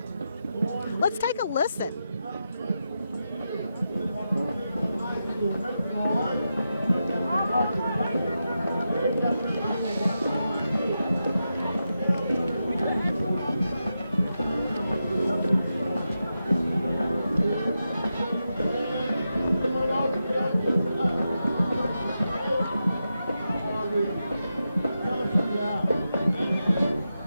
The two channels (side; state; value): both; inverted; correlation -0.88